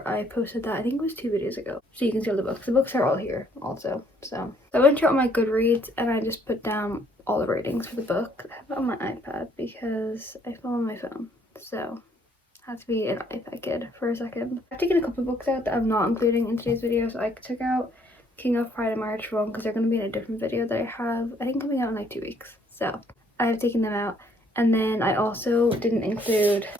I posted that, I think it was 2 videos ago, so you can see all the books. The books are all here also. So I went through all my Goodreads and I just put down all the ratings for the book. I have it on my iPad because I fell on my phone, so I have to be an iPad kid for a second. I've taken a couple of books out that I'm not including in today's video. So I took out King of Pride and March Rome because they're going to be in a different video that I have, I think, coming out in like 2 weeks. So I have taken them out. And then I also didn't include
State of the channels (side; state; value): both; normal; correlation 0.65